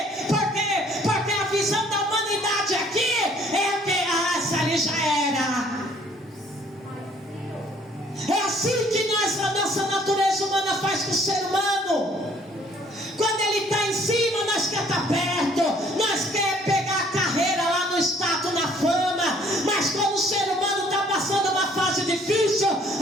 Porque a visão da humanidade aqui é que essa ali já era. É assim que a nossa natureza humana faz com o ser humano. Quando ele está em cima, nós quer estar perto, nós quer pegar a carreira lá no status, na fama. Mas quando o ser humano está passando uma fase difícil,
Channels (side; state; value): both; normal; correlation 0.60